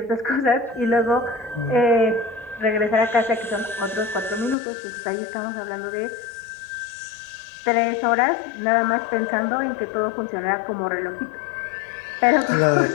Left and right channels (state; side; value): drops out; right; at 4.5 s